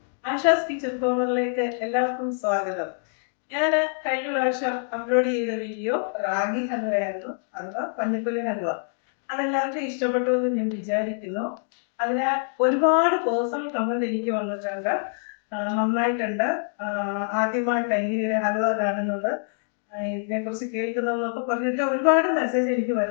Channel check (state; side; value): silent; right; digital silence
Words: Asha's kitchen കോർണറിലേക്ക് എല്ലാവർക്കും സ്വാഗതം. ഞാൻ കഴിഞ്ഞ പ്രാവശ്യം അപ്ലോഡ് ചെയ്ത വീഡിയോ റാഗി ഹൽവയായിരുന്നു, അഥവാ പഞ്ഞപ്പുല്ല് ഹൽവ. അതെല്ലാവർക്കും ഇഷ്ടപ്പെട്ടു എന്ന് ഞാൻ വിചാരിക്കുന്നു. അതിനാൽ ഒരുപാട് പേഴ്സണൽ കമന്റ് എനിക്ക് വന്നിട്ടുണ്ട്. നന്നായിട്ടുണ്ട്, ആദ്യമായിട്ട് എങ്ങനെ ഹൽവ കാണുന്നത്, ഇതിനെക്കുറിച്ച് കേൾക്കുന്നതെന്നൊക്കെ പറഞ്ഞിട്ട് ഒരുപാട് മെസ്സേജ് എനിക്ക്